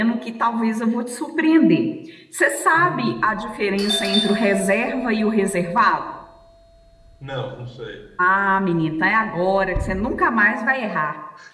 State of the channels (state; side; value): identical; both; correlation 1.00